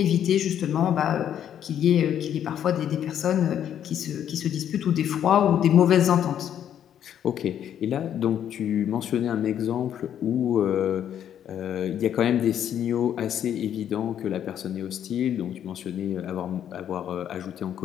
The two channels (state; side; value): quieter; right; 9.8 dB